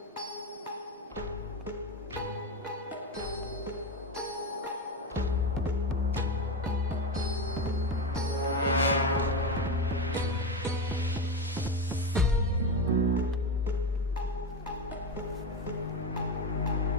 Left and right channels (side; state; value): both; normal; correlation 0.17